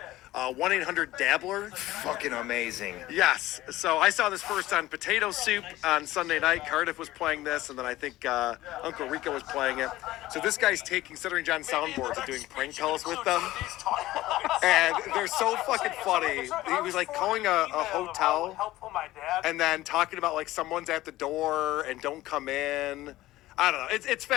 1-800-Dabbler. Fucking amazing. Yes. So I saw this first on Potato Soup on Sunday night. Cardiff was playing this, and then I think Uncle Rico was playing it. So this guy's taking Stuttering John soundboards and doing prank calls with them. And they're so fucking funny. He was like calling a hotel and then talking about like someone's at the door and don't come in. I don't know. It's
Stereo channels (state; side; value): quieter; right; 16.5 dB